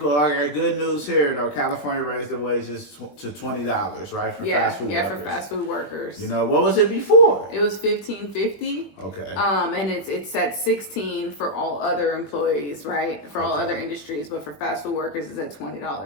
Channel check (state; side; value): late; right; 21 ms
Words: Okay, good news here though. California raised the wages to $20, right, for fast food workers. Yeah, for fast food workers. What was it before? It was $15.50. Okay. And it's at $16 for all other employees, right? For all other industries, but for fast food workers, it's at